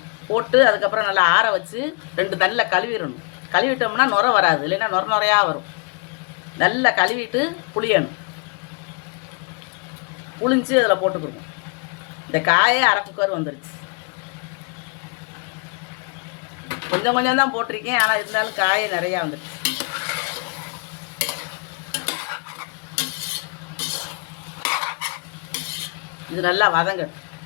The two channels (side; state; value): right; quieter; 34.6 dB